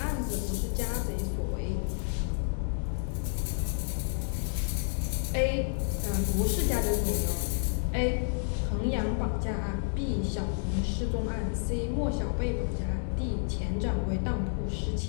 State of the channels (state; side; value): silent; right; digital silence